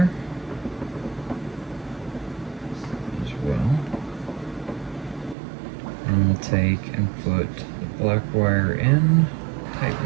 as well. And we'll take and put the black wire in,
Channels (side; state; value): left; drops out; at 5.4 s